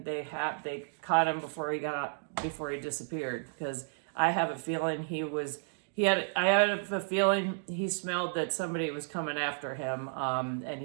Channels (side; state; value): left; silent; digital silence